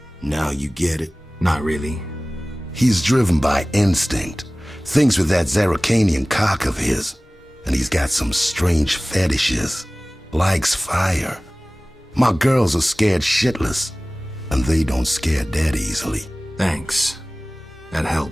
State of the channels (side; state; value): both; normal; correlation 0.98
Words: Now you get it? Not really. He's driven by instinct. Thinks with that Zarakanian cock of his. And he's got some strange fetishes. Likes fire. My girls are scared shitless. And they don't scare that easily. Thanks. That